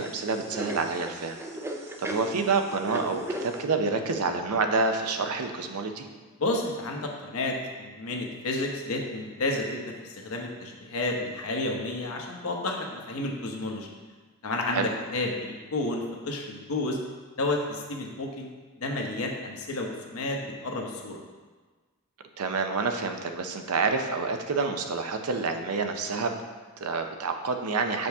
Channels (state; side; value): normal; both; correlation -0.09